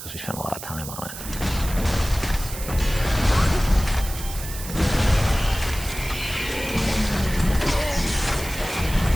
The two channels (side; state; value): right; noise; hiss, 11 dB below the sound